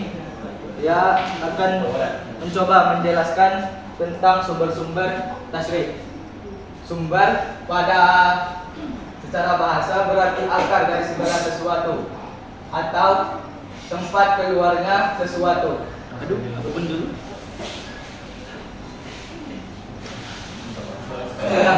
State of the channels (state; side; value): identical; both; correlation 1.00